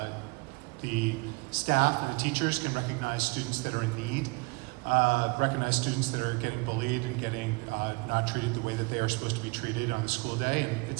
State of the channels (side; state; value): left; quieter; 28.4 dB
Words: the staff and the teachers can recognize students that are in need, recognize students that are getting bullied and getting not treated the way that they are supposed to be treated on the school day. And